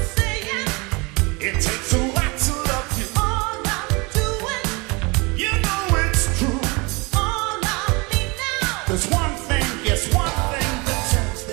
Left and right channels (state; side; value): quieter; left; 27.4 dB